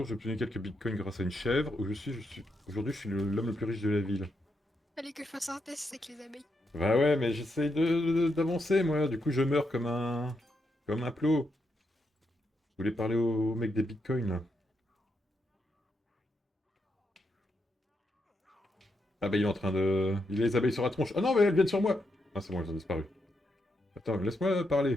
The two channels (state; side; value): normal; both; correlation 0.82